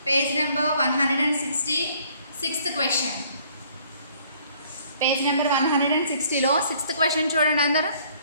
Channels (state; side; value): inverted; both; correlation -0.60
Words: page number 160 6th question. Page number 160లో 6th క్వశ్చన్ చూడండి అందరూ.